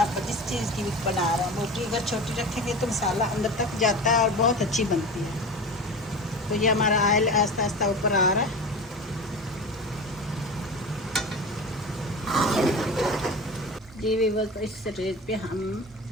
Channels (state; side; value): normal; both; correlation 0.31